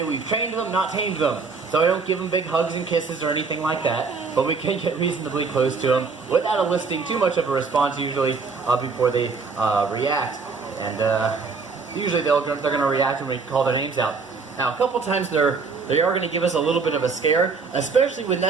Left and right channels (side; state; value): left; quieter; 4.7 dB